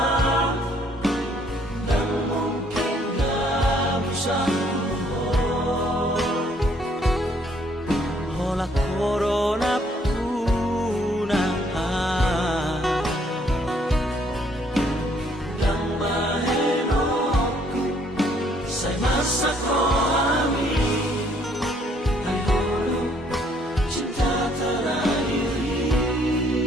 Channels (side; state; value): both; normal; correlation 0.65